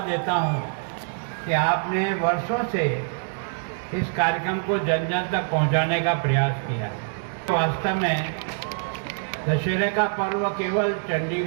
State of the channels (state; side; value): silent; left; digital silence